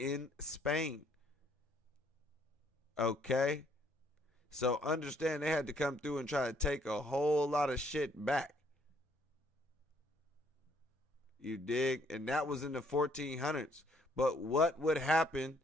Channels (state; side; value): normal; both; correlation 0.66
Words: Spain. Okay? So understand they had to come through and try to take a whole lot of shit back. You dig? And that was in the 1400s. But what would happen